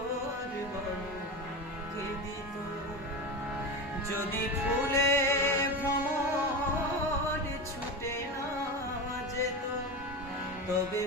বলো কে দিত? যদি ফুলে ভ্রমর ছুটে না যেত তবে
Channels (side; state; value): both; normal; correlation 0.22